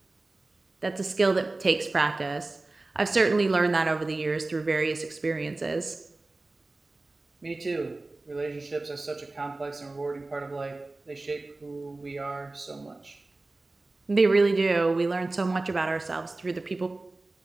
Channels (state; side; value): quieter; left; 3.1 dB